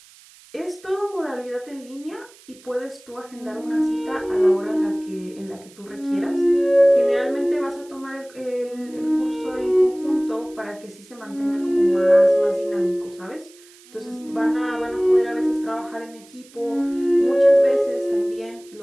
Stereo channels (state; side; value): noise; right; hiss, 25 dB below the sound